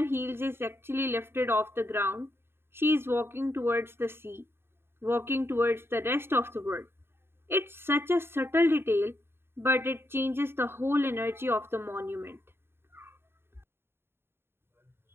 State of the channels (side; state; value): left; late; 0.11 ms